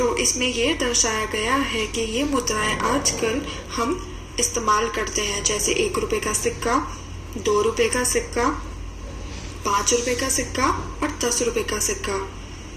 इसमें ये दर्शाया गया है कि ये मुद्राएं आजकल हम इस्तेमाल करते हैं, जैसे 1 रुपए का सिक्का, 2 रुपए का सिक्का, 5 रुपए का सिक्का और 10 रुपए का सिक्का।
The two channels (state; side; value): identical; both; correlation 1.00